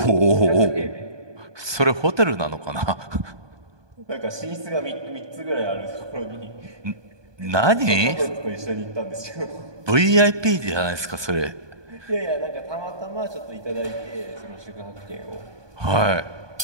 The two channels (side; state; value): left; late; 1.2 ms